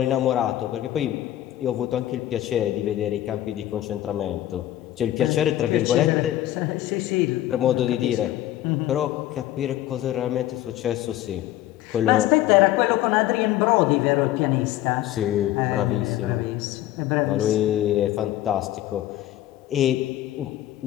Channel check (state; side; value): quieter; right; 13.8 dB